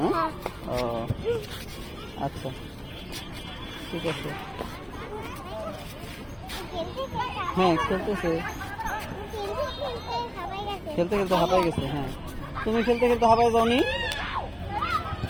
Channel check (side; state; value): both; identical; correlation 1.00